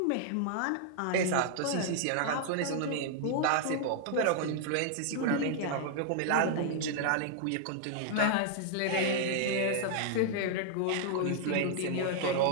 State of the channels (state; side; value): different; both; correlation -0.01